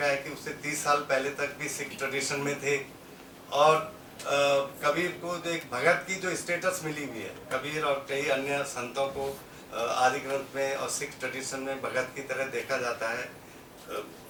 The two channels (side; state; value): both; identical; correlation 1.00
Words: है कि उससे 30 साल पहले तक भी सिख ट्रेडिशन में थे। और कबीर को जो एक भगत की जो स्टेटस मिली हुई है, कबीर और कई अन्य संतों को आदि ग्रंथ में और सिख ट्रेडिशन में भगत की तरह देखा जाता है।